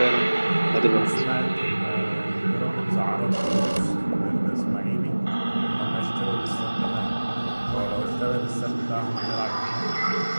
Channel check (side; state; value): both; inverted; correlation -1.00